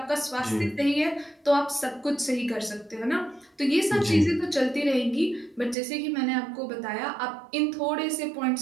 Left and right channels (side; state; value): left; drops out; at 5.8 s